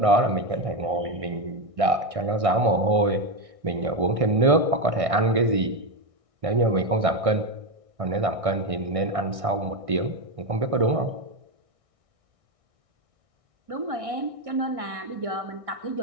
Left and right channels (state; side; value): late; left; 1.6 ms